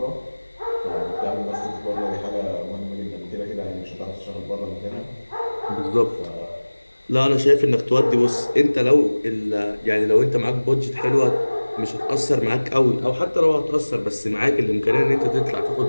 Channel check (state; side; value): inverted; both; correlation -1.00